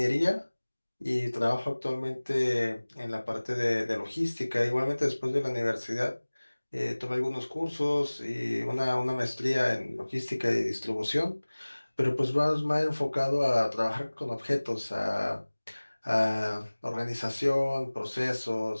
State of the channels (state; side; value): inverted; both; correlation -1.00